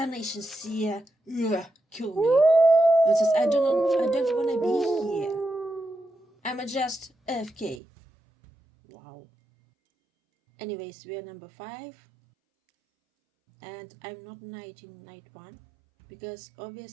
seer, kill me. It says I don't wanna be here. I'm just AFK. Wow. Anyways, we are number 5. And I'm not knight in night 1. Because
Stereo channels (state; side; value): drops out; left; at 7.8 s